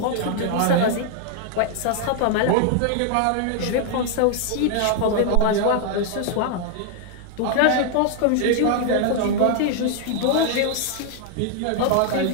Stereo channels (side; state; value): both; different; correlation 0.00